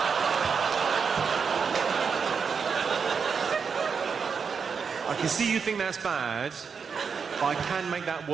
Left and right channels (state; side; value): quieter; left; 5.9 dB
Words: I can see you think that's bad, but I can make that